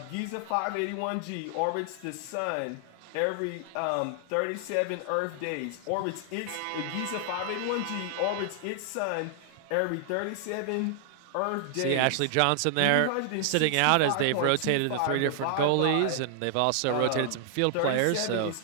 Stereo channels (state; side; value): different; both; correlation -0.01